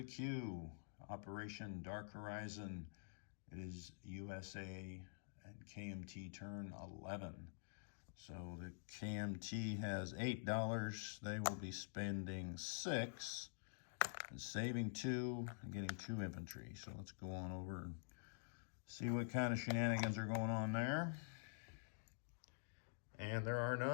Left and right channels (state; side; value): silent; right; digital silence